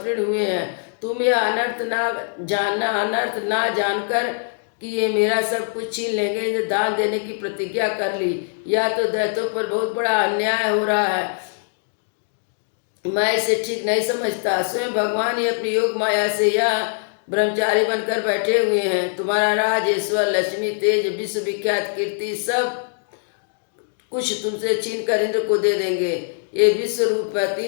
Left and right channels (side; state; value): right; silent; digital silence